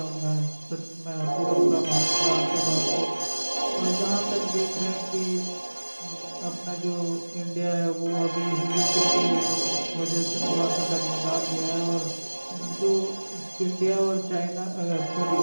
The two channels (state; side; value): inverted; both; correlation -1.00